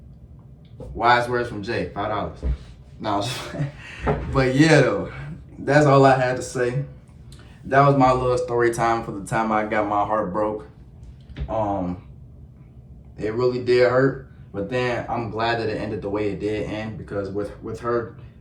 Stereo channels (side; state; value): both; identical; correlation 1.00